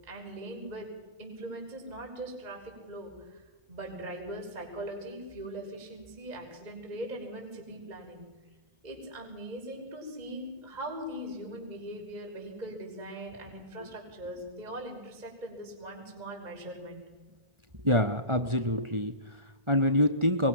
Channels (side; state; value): left; late; 1.4 ms